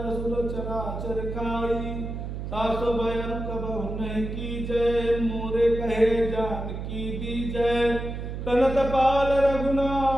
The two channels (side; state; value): right; noise; hum, 6 dB below the sound